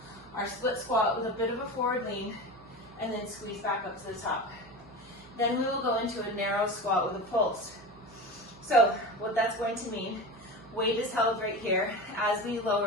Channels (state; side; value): noise; right; hum, 23 dB below the sound